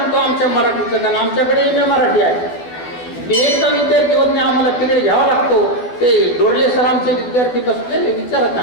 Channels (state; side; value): late; right; 12 ms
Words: आमच्या मराठीचं, कारण आमच्याकडे MA मराठी आहे, एकदा विद्यार्थी होत नाही, आम्हाला तिकडे घ्यावा लागतो. ते डोरले सर आमचे विद्यार्थी बसलेले विचारत